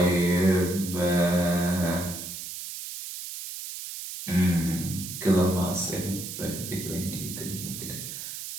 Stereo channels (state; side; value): noise; right; hiss, 8 dB below the sound